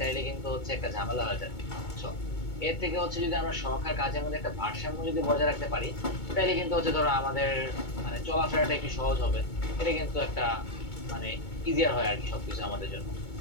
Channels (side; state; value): right; late; 2.2 ms